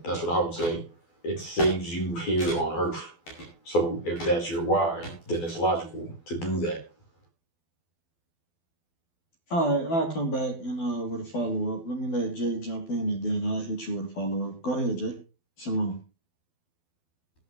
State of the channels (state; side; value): late; right; 12 ms